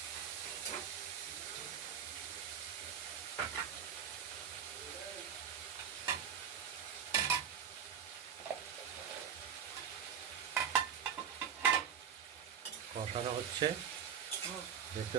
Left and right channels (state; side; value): quieter; left; 8.1 dB